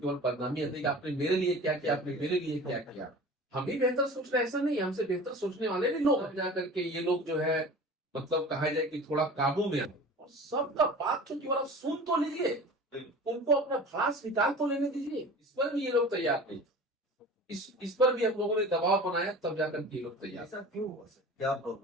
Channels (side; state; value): both; normal; correlation 0.39